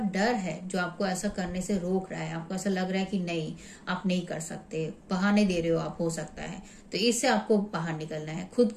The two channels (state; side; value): identical; both; correlation 1.00